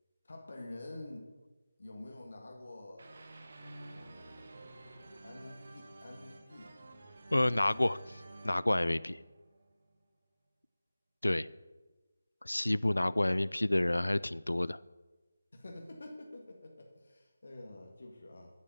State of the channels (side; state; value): both; inverted; correlation -1.00